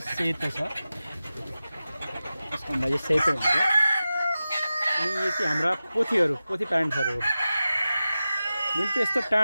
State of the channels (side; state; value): both; inverted; correlation -0.94